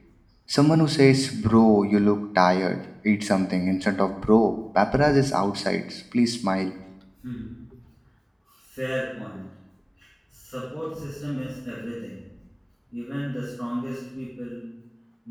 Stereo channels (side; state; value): both; identical; correlation 1.00